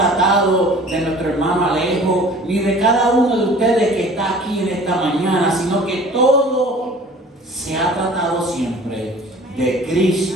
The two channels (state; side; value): normal; both; correlation 0.47